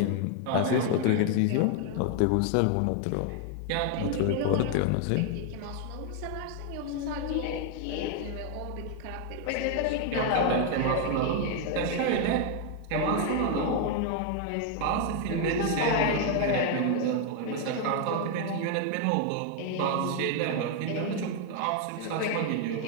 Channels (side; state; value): both; different; correlation 0.00